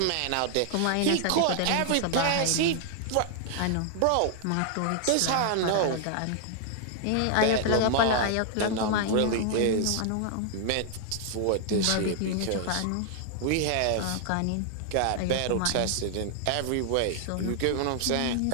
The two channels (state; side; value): different; both; correlation 0.00